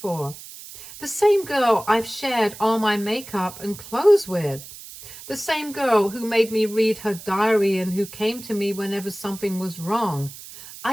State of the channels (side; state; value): right; noise; hiss, 15 dB below the sound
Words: The same girl I've shared all my makeup and clothes with. The same girl who made me read her diary and who came to me whenever something was wrong.